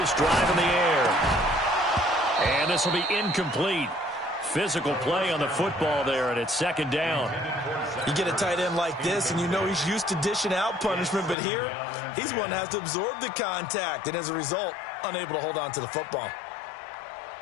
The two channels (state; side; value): drops out; right; at 11.4 s